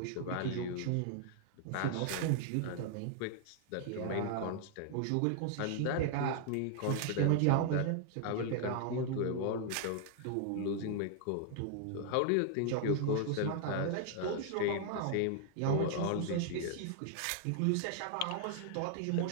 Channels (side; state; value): both; different; correlation 0.00